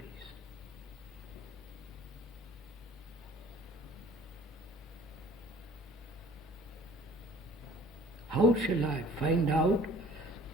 How shall I find out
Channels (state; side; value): normal; both; correlation 0.51